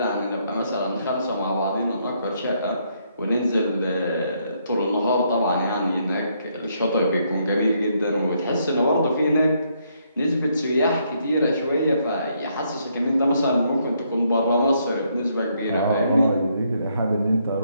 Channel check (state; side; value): inverted; both; correlation -0.73